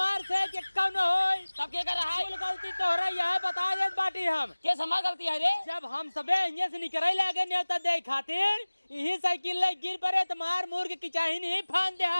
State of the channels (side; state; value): both; inverted; correlation -1.00